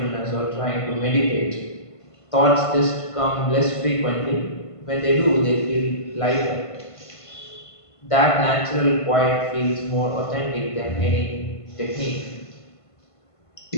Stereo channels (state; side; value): late; right; 1.5 ms